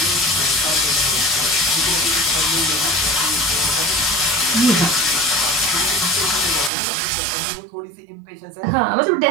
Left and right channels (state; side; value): drops out; left; at 6.7 s